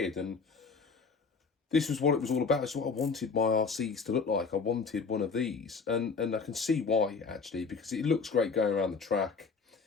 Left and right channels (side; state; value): right; quieter; 4.9 dB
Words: and this was what it was all about. It's what I wanted my RCs to look like. I wanted one of these. And I can see why, actually, because it looks great going around the track.